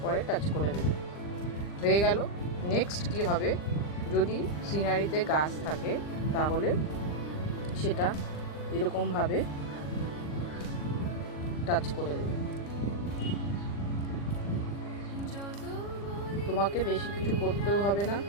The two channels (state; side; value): late; right; 40 ms